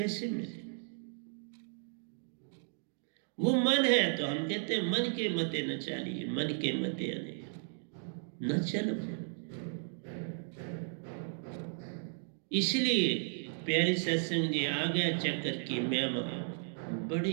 मिले? वो मन है, तो हम कहते हैं मन के मते न चलिए, मन के मते न चलो। इसलिए प्यारी सत्संग जी, आ गया चक्कर की महिमा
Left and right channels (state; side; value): silent; left; digital silence